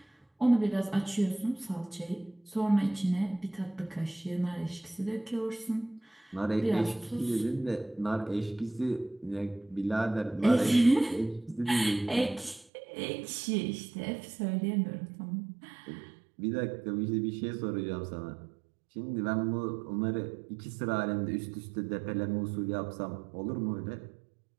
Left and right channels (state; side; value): drops out; left; at 12.7 s